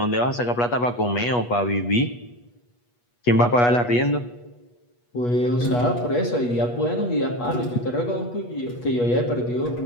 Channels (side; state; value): right; late; 8.3 ms